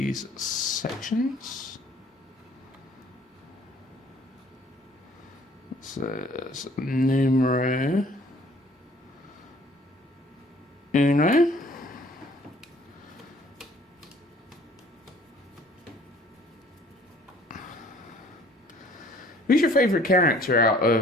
sections. So it's numero uno. Who's your favourite character out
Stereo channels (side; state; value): both; normal; correlation 0.55